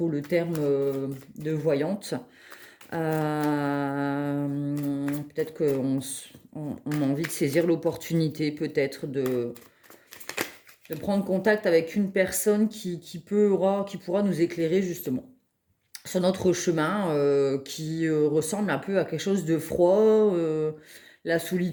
le terme de voyante. Peut-être qu'on a envie de saisir l'opportunité, peut-être de prendre contact avec une personne qui pourra nous éclairer justement sur notre chemin, qui ressemble un peu à quelque chose de froid, la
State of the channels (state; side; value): identical; both; correlation 1.00